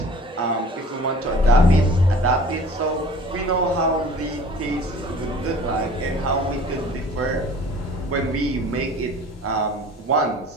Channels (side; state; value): both; normal; correlation 0.47